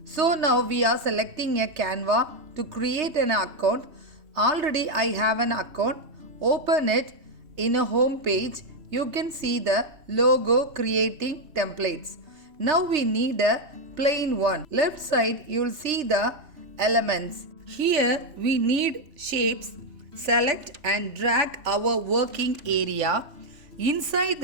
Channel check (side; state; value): left; late; 3.3 ms